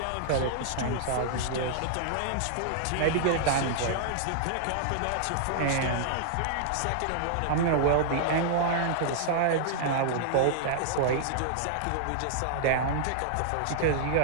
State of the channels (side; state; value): both; different; correlation -0.01